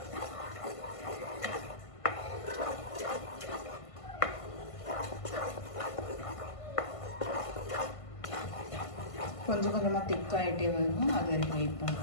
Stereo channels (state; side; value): late; right; 1.5 ms